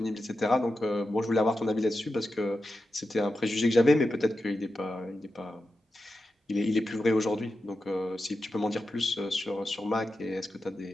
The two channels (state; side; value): normal; both; correlation 0.90